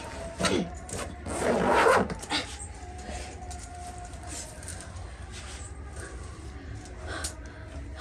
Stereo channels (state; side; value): identical; both; correlation 1.00